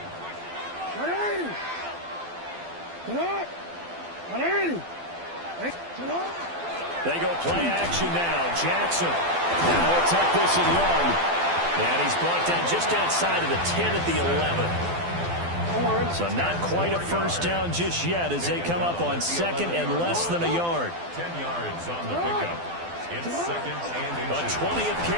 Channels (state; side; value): late; left; 12 ms